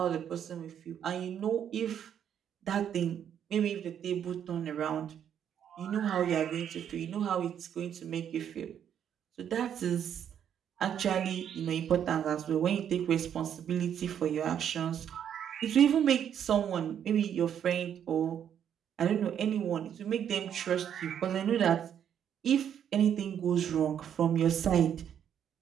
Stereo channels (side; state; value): left; quieter; 9.1 dB